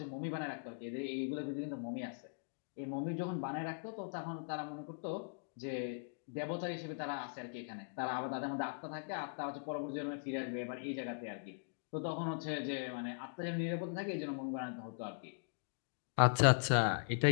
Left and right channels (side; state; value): right; silent; digital silence